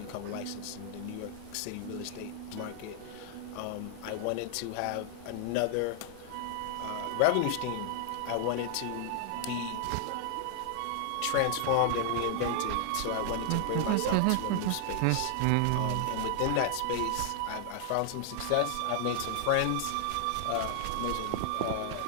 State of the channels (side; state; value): both; different; correlation 0.00